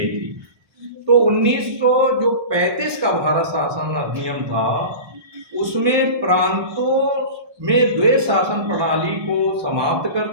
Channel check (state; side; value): late; left; 1.2 ms